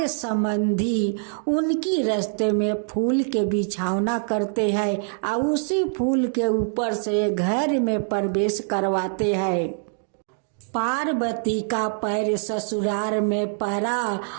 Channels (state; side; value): silent; left; digital silence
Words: संबंधी उनकी रास्ते में फूल के बिछौना करते हैं और उसी फूल के ऊपर से घर में प्रवेश करवाते हैं। पार्वती का पैर ससुराल में पड़ा